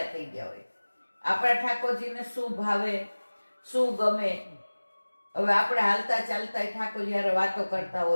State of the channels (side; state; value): both; inverted; correlation -1.00